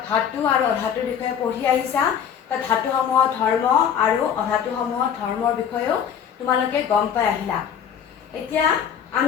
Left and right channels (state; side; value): quieter; right; 8.3 dB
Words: ধাতু আৰু অধাতুৰ বিষয়ে পঢ়ি আহিছা। তাত ধাতুসমূহৰ ধৰ্ম আৰু অধাতুসমূহৰ ধৰ্মৰ বিষয়েও তোমালোকে গম পাই আহিলা। এতিয়া